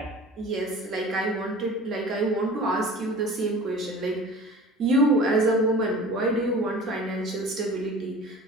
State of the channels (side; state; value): both; normal; correlation 0.41